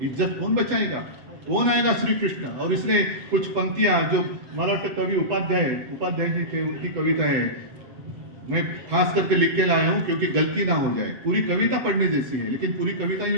इज्जत कौन बचाएगा? कौन आएगा? श्री कृष्ण। और इसलिए कुछ पंक्तियां जो मला वाटतं कवि उपाध्याय जी थे, उनकी कविता है, मैं खास करके लिख के लाया हूं क्योंकि गलती ना हो जाए। पूरी कविता पढ़ने जैसी है, लेकिन पूरी कविता ही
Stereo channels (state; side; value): late; left; 8.1 ms